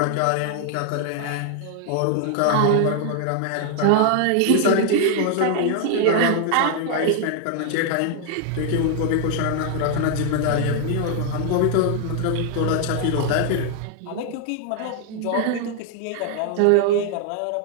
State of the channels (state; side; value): different; both; correlation 0.00